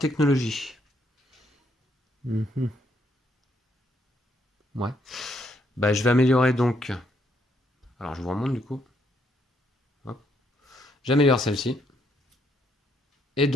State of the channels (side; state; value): both; normal; correlation 0.73